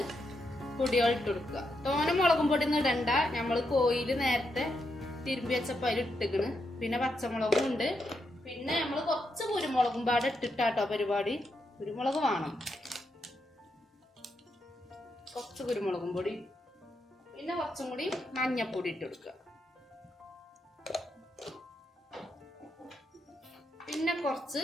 പൊടികൾ ഇട്ട് കൊടുക്കുക. തോനെ മുളകും പൊടി ഒന്നും ഇടണ്ട. നമ്മള് കോയില് നേരത്തെ തിരുമ്പി വെച്ചപ്പോ അതിൽ ഇട്ടിക്കണ്. പിന്നെ പച്ചമുളകും ഉണ്ട്. പിന്നെ നമ്മള് കുറച്ച് കുരുമുളകും പാടെ ഇട്ടിട്ടാട്ടോ പരിപാടി. കുരുമുളക് വേണം, കുറച്ച് കുരുമുളകും പൊടി. പിന്നെ കുറച്ചും കൂടി മഞ്ഞപ്പൊടി ഇട്ട് കൊടുക്കുക. പിന്നെ കുറച്ച്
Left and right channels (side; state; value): both; normal; correlation 0.82